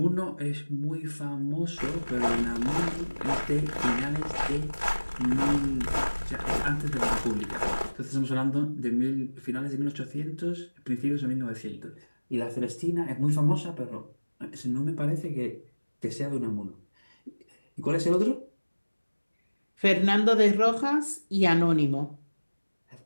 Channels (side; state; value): both; inverted; correlation -1.00